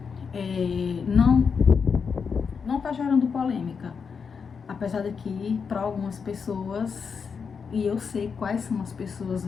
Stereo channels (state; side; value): quieter; right; 5.9 dB